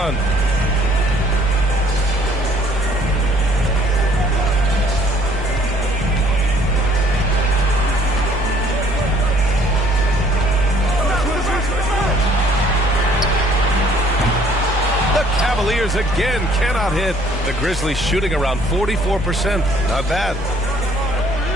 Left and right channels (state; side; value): noise; left; hum, 11 dB below the sound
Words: Cavaliers again cannot hit. The Grizzlies shooting around 44%. Not bad.